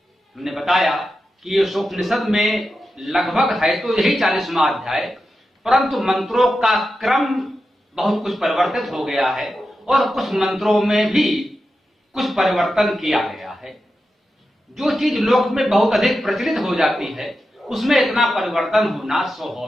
हमने बताया कि ईशोपनिषद में लगभग है तो यही 40वां अध्याय, परंतु मंत्रों का क्रम बहुत कुछ परिवर्तित हो गया है और कुछ मंत्रों में भी कुछ परिवर्तन किया गया है। जो चीज लोक में बहुत अधिक प्रचलित हो जाती है उसमें इतना परिवर्तन होना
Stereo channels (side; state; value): both; normal; correlation 0.90